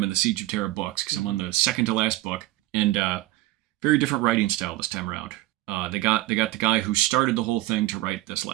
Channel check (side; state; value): left; quieter; 17.3 dB